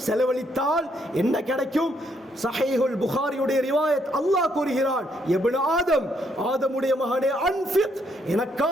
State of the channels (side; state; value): both; normal; correlation 0.73